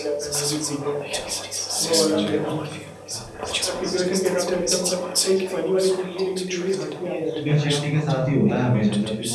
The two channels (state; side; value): identical; both; correlation 1.00